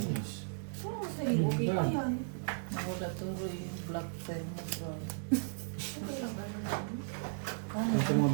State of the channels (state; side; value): silent; left; digital silence